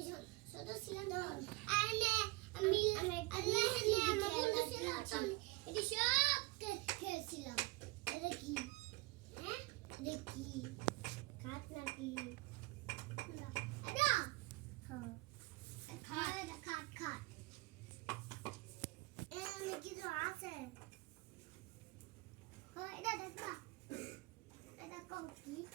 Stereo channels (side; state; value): left; quieter; 23.1 dB